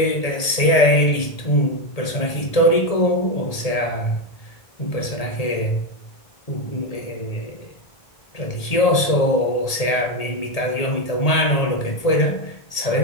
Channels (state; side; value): late; right; 1.8 ms